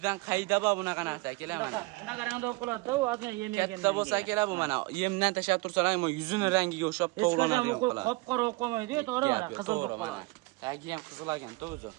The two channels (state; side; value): quieter; left; 23.4 dB